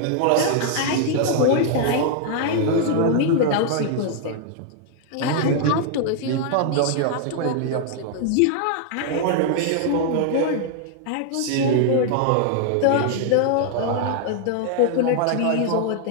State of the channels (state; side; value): different; both; correlation 0.00